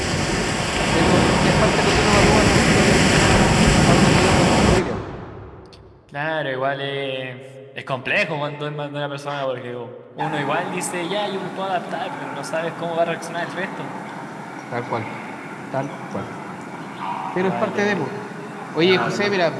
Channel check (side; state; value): both; identical; correlation 1.00